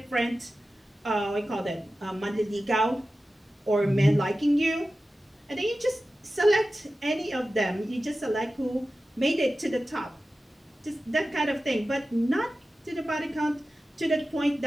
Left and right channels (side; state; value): both; normal; correlation 0.94